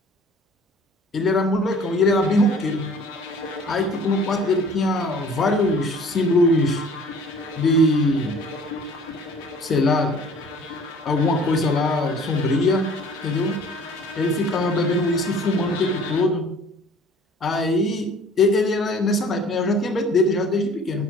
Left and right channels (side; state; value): both; normal; correlation 0.50